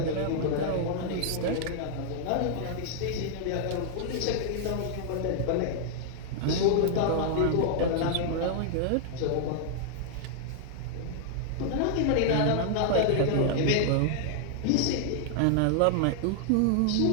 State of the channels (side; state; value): both; different; correlation -0.01